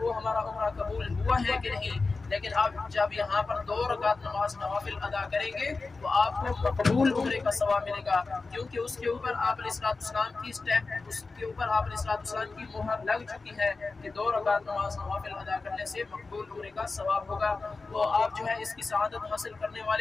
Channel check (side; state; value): right; quieter; 3.9 dB